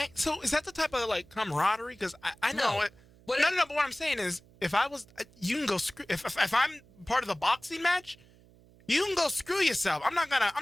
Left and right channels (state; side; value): noise; right; hum, 27 dB below the sound